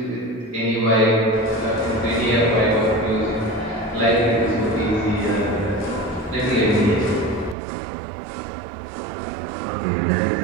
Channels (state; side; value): drops out; left; at 7.6 s